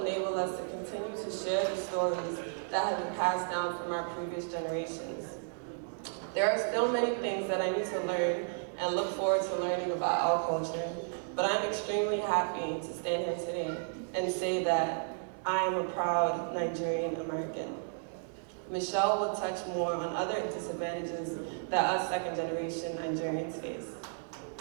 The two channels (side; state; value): left; silent; digital silence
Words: enable us to continue to share the stories that have been passed down from our previous generations. There are still many things that I need to learn and look forward to learning about our culture, but I'm extremely happy to stand here today and say that I am a proud Nigerian American. Michelle will touch more on other disadvantages that us second-generation Nigerians face.